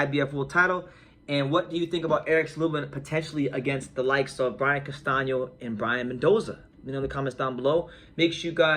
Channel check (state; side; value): identical; both; correlation 1.00